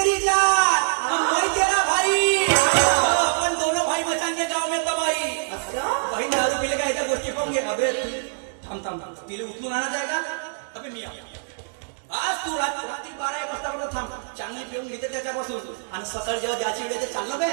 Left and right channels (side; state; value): left; silent; digital silence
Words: जान मैं तेरा भाई पण दोनों भाई बचाने गाव में तबाही भाई दारू पिले का याच्या गोष्टी पाहून घे अबे थांब थांब तिला उचलून आणा जायगा अबे मी आज तू रात्री 12-1 वाजता थांब चांगली पिऊन घेते त्याच्यापासून आणि सकाळी जेव्हा ज्याची वेळ ते चाललं बे